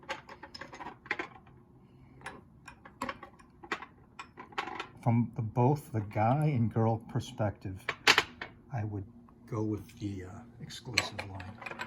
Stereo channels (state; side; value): identical; both; correlation 1.00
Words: from both the guy and girl perspective, I would go with the exclusive line.